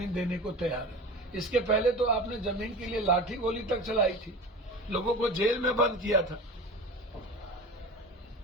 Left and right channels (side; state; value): both; normal; correlation 0.33